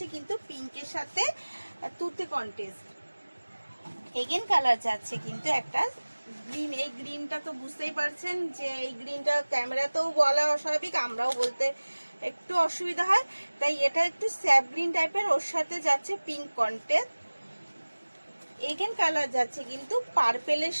কিন্তু পিঙ্কের সাথে তুতে কন্টেস্ট, এগেন কালার যাচ্ছে কিন্তু একটা গ্রিন। এই গ্রিনটা তো বুঝতেই পারছেন যে এই গ্রিনটা ক্যামেরাতেও বলা অস্বাভাবিক, আমরাও বলতে একটু অসুবিধা হয়, তাই এটা একটু স্যাপ গ্রিন টাইপের। ওর সাথে যাচ্ছে পিঙ্ক কন্টেস্ট, এগেন কালার যাচ্ছে কিন্তু পার্পেলের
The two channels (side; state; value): both; inverted; correlation -1.00